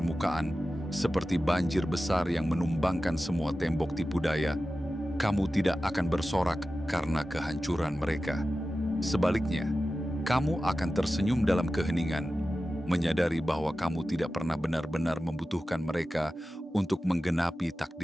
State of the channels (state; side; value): normal; both; correlation 0.94